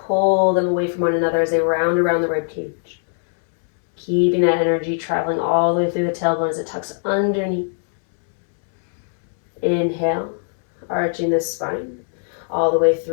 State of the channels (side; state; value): right; silent; digital silence